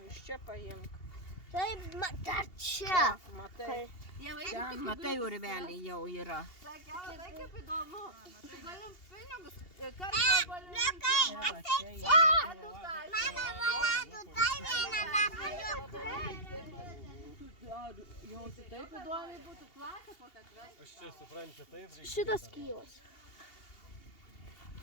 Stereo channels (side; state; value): right; late; 2.8 ms